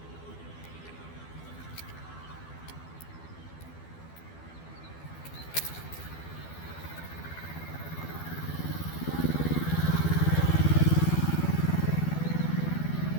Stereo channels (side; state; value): right; late; 12 ms